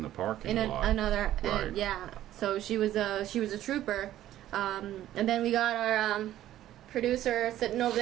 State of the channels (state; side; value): quieter; left; 13.1 dB